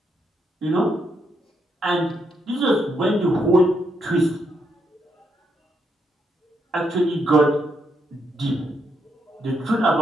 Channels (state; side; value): normal; both; correlation 0.78